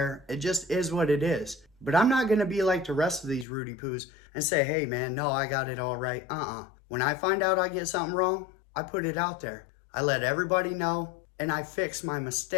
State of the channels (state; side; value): drops out; right; at 3.5 s